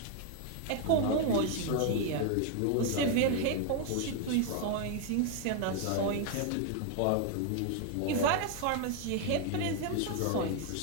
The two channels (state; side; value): different; both; correlation 0.00